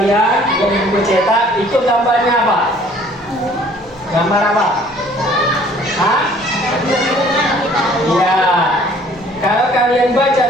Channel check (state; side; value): normal; both; correlation 0.56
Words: yang di buku cetak, itu gambarnya apa? Gambar apa? Hah? Iya. Kalau kalian baca